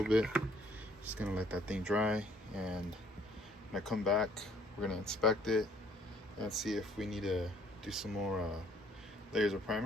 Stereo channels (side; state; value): both; normal; correlation 0.61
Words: bit. Just gonna let that thing dry, and when I come back, we're gonna inspect it and see if we need to do some more layers of